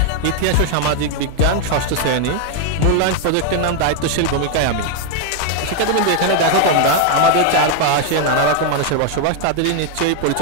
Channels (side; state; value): both; different; correlation 0.00